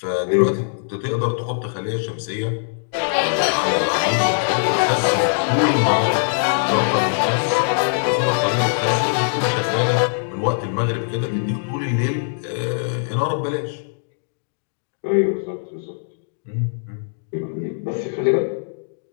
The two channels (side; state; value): right; silent; digital silence